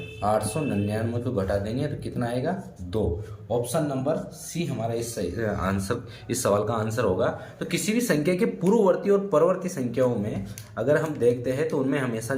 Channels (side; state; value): both; identical; correlation 1.00